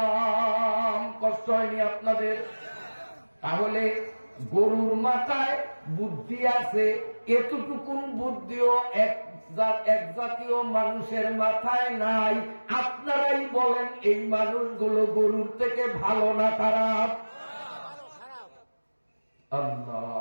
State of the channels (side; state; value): both; inverted; correlation -1.00